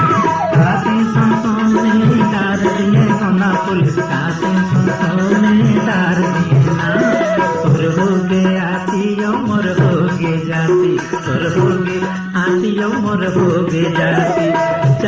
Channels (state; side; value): identical; both; correlation 1.00